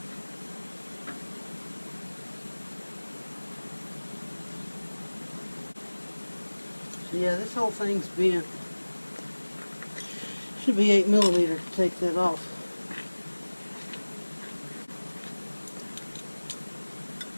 So yeah, this whole thing's bent. Should be 8mm to take that off.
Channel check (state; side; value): inverted; both; correlation -1.00